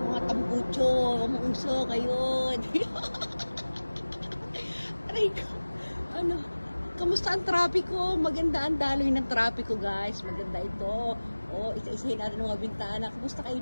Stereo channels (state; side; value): inverted; both; correlation -1.00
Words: mga tambucho, mga uso, kayo. Aray ko. Ano, kamusta ang trapiko? Maganda ang daloy ng trapiko, guys. Maganda ito. O, isa-isahin natin ang mga bintana. Kumusta kayo